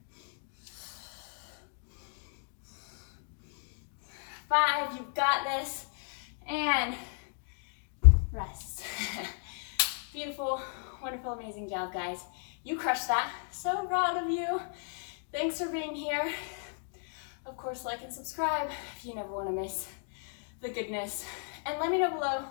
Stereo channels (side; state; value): right; silent; 55 dB below the other